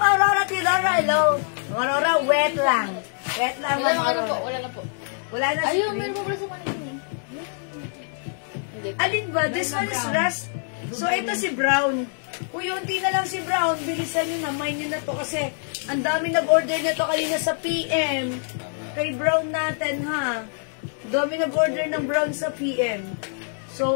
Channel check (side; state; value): right; silent; 60 dB below the other